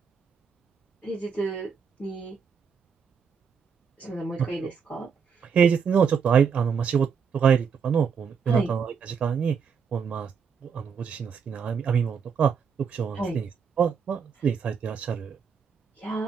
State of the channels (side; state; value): left; quieter; 6.5 dB